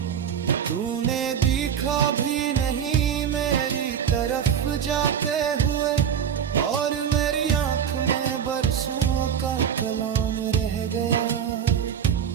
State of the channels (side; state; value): left; quieter; 8.3 dB